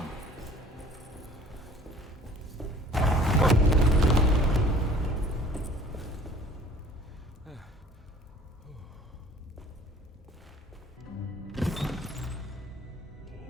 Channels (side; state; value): both; normal; correlation 0.50